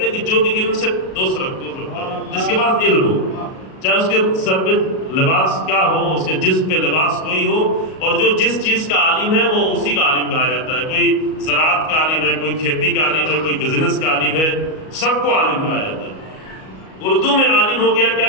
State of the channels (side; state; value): right; late; 38 ms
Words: ہیں کہ جو بھی علم سے دوست رکھتا ہے، جس کے پاس علم ہو، چاہے اس کے سر پہ لباس کیا ہو، اس کے جسم پہ لباس کوئی ہو، اور جو جس چیز کا عالم ہے وہ اسی کا عالم کہا جاتا ہے۔ کوئی زراعت کا عالم ہے، کوئی کھیتی کا عالم ہے، کوئی بزنس کا عالم ہے، سب کو عالم کہا جاتا ہے۔ اردو میں عالم ہو گیا کیا